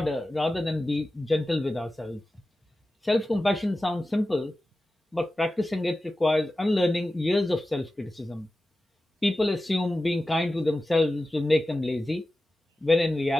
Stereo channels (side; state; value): both; normal; correlation 0.94